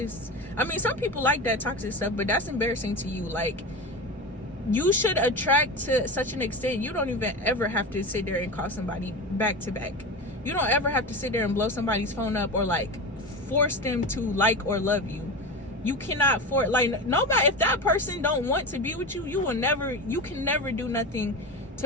I mean, some people like that toxic stuff, but that's embarrassing to you. Like, you should attract to such an extent you don't even ever have to sit there and call somebody back to back. You don't ever have to sit there and blow somebody's phone up or like force them to like or love you. You cannot force, like, nobody, if that person don't want to be with you, you can never do nothing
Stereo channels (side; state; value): both; normal; correlation 0.24